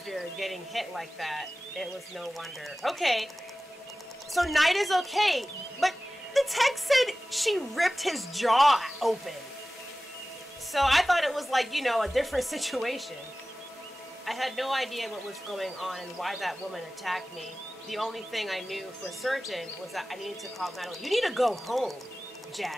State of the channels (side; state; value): both; normal; correlation 0.97